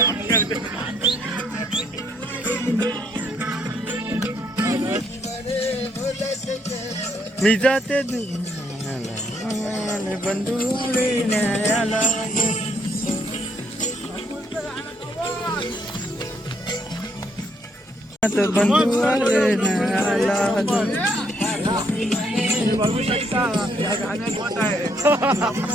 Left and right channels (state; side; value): normal; both; correlation 0.70